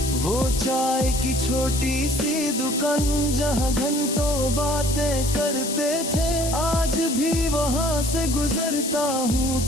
वो चाय की छोटी सी दुकान जहाँ घंटों बातें करते थे, आज भी वहाँ से गुजरता हूँ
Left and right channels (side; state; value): left; noise; hiss, 6 dB below the sound